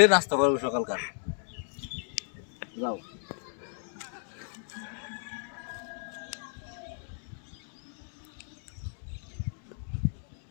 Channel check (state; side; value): silent; right; 56 dB below the other